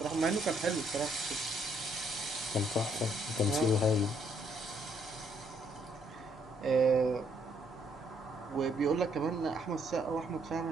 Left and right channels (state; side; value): normal; both; correlation 0.70